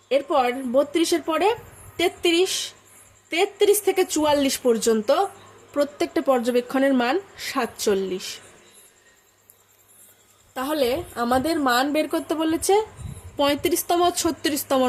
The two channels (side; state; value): both; identical; correlation 1.00